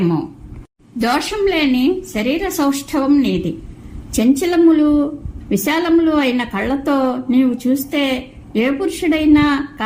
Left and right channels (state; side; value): identical; both; correlation 1.00